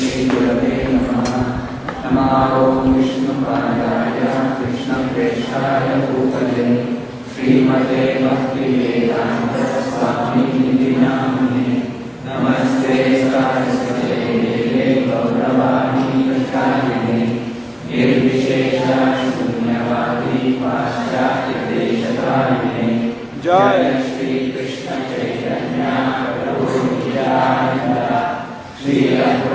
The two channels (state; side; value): identical; both; correlation 1.00